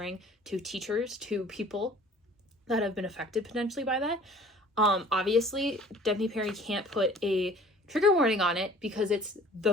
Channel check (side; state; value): both; normal; correlation 0.50